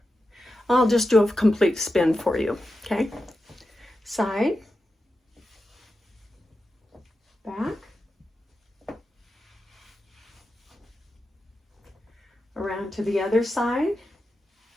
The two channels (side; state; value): both; normal; correlation 0.90